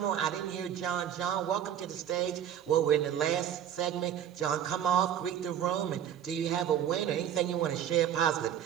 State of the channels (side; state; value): left; quieter; 10.0 dB